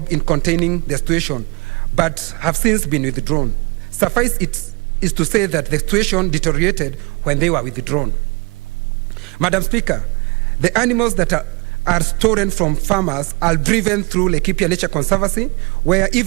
in containing the situation, but have since been withdrawn. Suffice it is to say that the situation deteriorated when they were withdrawn. Madam Speaker, the animals that are stolen from farmers are driven through Laikipia Nature Conservancy, where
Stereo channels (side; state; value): left; quieter; 28.1 dB